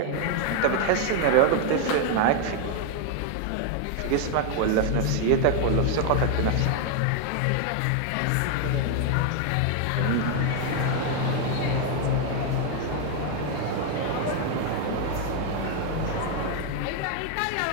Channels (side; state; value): both; different; correlation 0.00